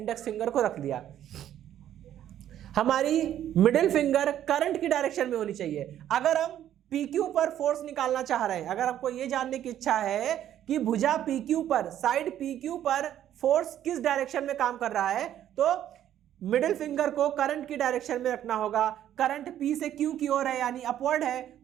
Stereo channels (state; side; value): quieter; left; 11.2 dB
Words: फिंगर को रख दिया। हमारी मिडिल फिंगर करंट की डायरेक्शन में होनी चाहिए। अगर हम PQ पर फोर्स निकालना चाह रहे हैं, अगर आपको यह जानने की इच्छा है कि भुजा PQ पर, साइड PQ पर फोर्स किस डायरेक्शन में काम कर रहा है, तो मिडिल फिंगर को करंट की डायरेक्शन में रखना होगा। करंट P से Q की ओर है यानी अपवर्ड है,